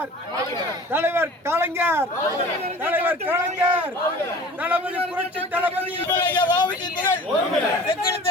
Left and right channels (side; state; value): both; normal; correlation 0.43